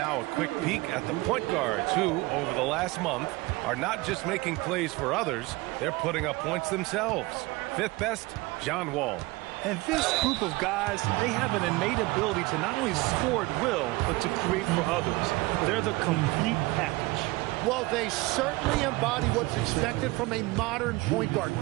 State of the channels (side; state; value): left; quieter; 21.8 dB